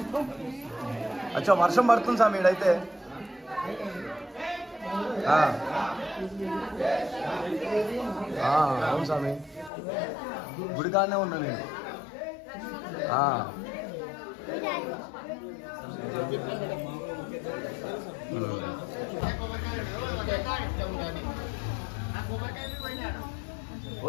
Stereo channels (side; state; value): right; drops out; at 9.7 s